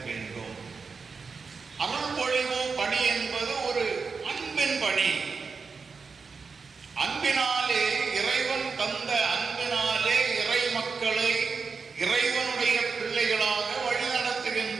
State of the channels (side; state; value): left; quieter; 5.0 dB